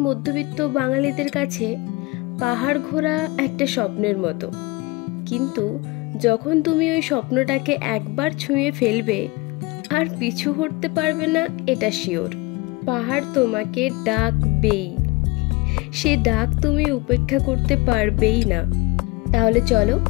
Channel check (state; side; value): quieter; right; 23.9 dB